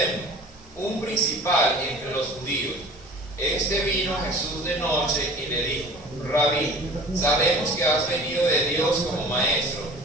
un principal entre los judíos. Este vino a Jesús de noche y le dijo: Rabí, sabemos que has venido de Dios como maestro,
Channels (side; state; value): both; normal; correlation 0.43